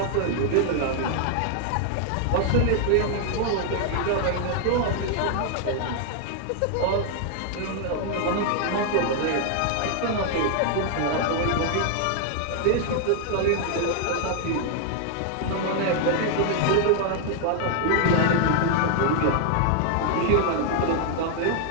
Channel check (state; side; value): different; both; correlation 0.00